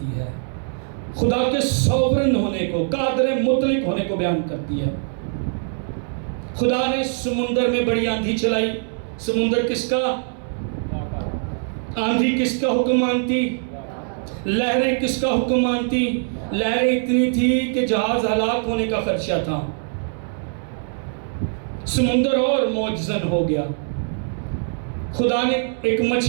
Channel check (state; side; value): silent; left; 64 dB below the other